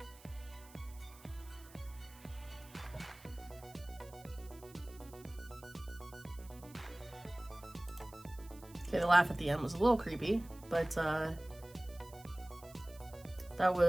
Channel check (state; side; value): noise; right; hiss, 21 dB below the sound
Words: Okay, the laugh at the end was a little creepy, but that